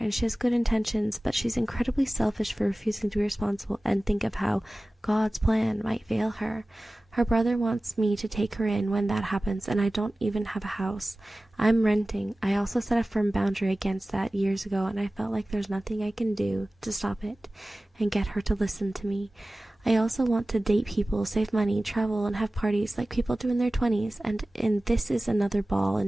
she has good intentions, but she's incredibly selfish for refusing to be responsible and think of how God's plan might fail her. Her brother wants me to take her in when that happens, and I don't even have a house. I'm renting. I also set a firm boundary against that years ago, and I felt like there's nothing I can do to stop it and get her to listen to me. I also want to date people, save money, travel, and have parties like people do in their 20s, and this is another ball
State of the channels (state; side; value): normal; both; correlation 0.97